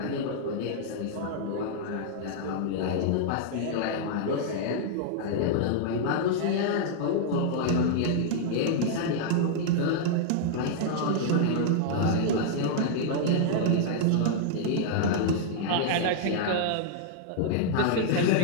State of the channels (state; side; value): different; both; correlation -0.01